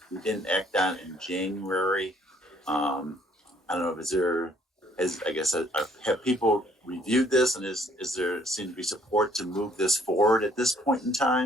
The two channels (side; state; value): both; normal; correlation 0.62